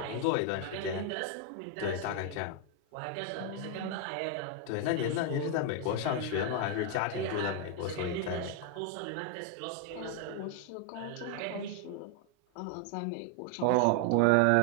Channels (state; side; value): different; both; correlation 0.00